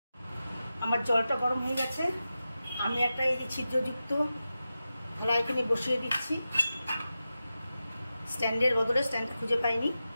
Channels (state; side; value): inverted; both; correlation -0.92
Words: আমার জলটা গরম হয়ে গেছে। আমি একটা এই যে ছিদ্রযুক্ত থালা এখানে বসিয়ে দিচ্ছি। স্ট্যান্ডের বদলে স্ট্যান্ডটা খুঁজে পাইনি,